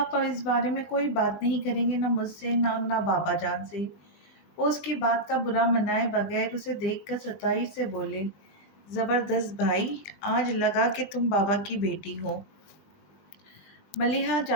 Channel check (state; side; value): late; right; 19 ms